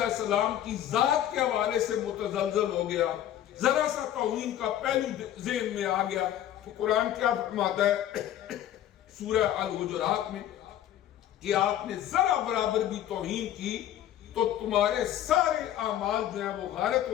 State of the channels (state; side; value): quieter; right; 11.6 dB